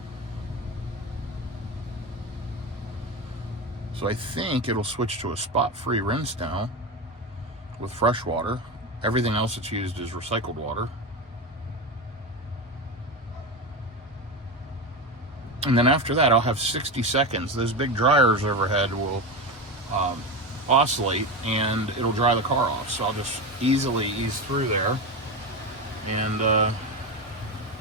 So I think it'll switch to a spot-free rinse now with fresh water. Everything else that's used is recycled water. And then after that, I'll have 60 seconds. Those big dryers overhead will oscillate, and it'll dry the car off. So I'll just easily ease through there and go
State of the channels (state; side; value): normal; both; correlation 0.19